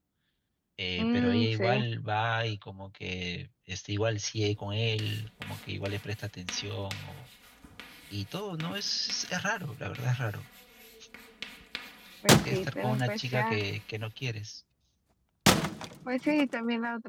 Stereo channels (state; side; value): identical; both; correlation 1.00